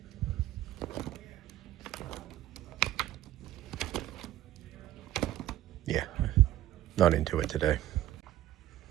Yeah, not into it today.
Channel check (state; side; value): quieter; left; 13.7 dB